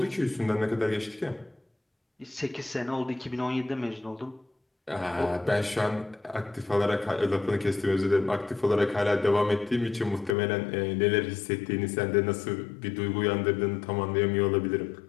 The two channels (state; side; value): drops out; right; at 10.4 s